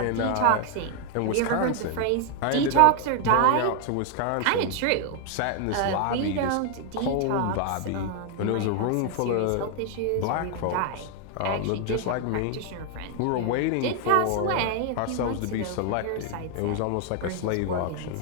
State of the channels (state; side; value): different; both; correlation 0.00